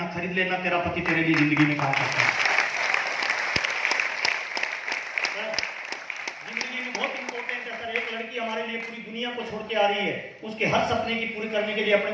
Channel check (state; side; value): identical; both; correlation 1.00